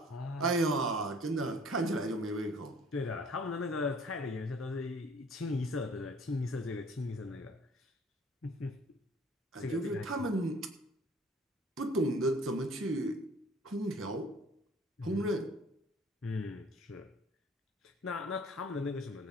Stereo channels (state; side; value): normal; both; correlation 0.53